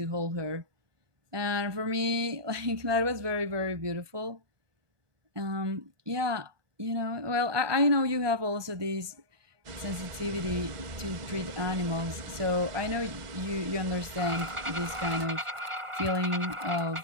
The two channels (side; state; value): left; late; 1.4 ms